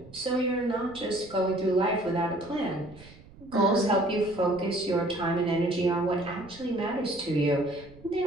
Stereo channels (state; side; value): noise; right; rumble, 21 dB below the sound